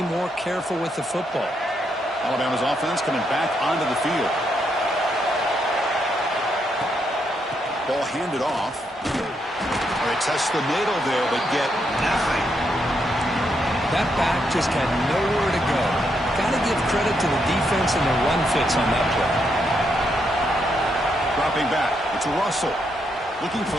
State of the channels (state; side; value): normal; both; correlation 0.78